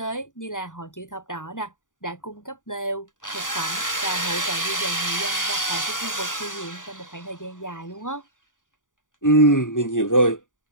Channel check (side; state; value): right; late; 0.87 ms